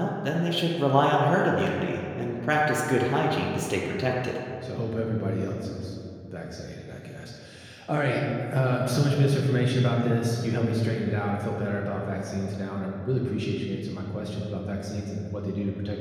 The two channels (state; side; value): identical; both; correlation 1.00